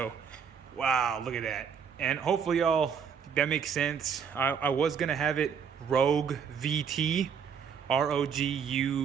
wow, look at that. And hopefully y'all, that makes sense. I was gonna have it Rogue VT,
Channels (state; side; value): quieter; left; 7.0 dB